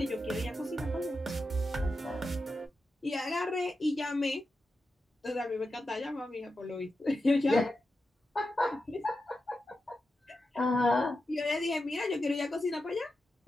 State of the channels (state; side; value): normal; both; correlation 0.89